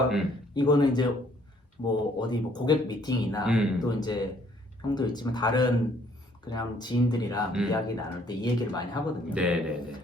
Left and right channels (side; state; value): both; normal; correlation 0.63